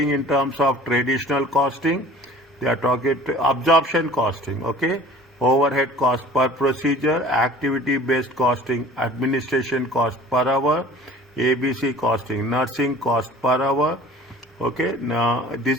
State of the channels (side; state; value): both; normal; correlation 0.46